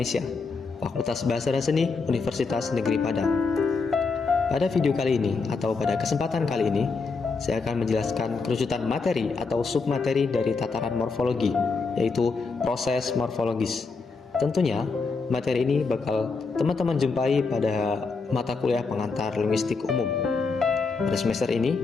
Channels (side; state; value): right; quieter; 4.5 dB